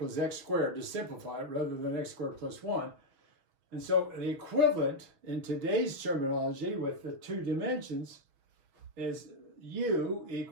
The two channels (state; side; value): late; left; 6.5 ms